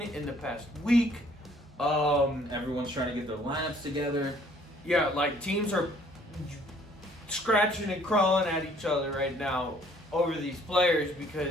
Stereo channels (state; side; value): normal; both; correlation 0.60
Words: in the past week. Everyone's trying to get their lineups together. Yeah, like teams are scratching and crawling at each other right now over these players